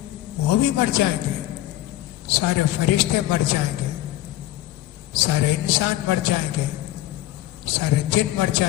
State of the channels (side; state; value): right; quieter; 14.8 dB